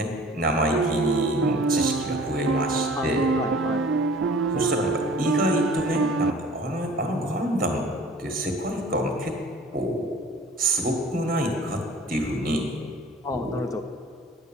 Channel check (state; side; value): normal; both; correlation 0.48